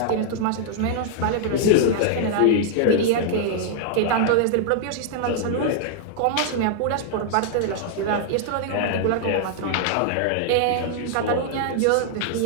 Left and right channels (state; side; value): different; both; correlation -0.01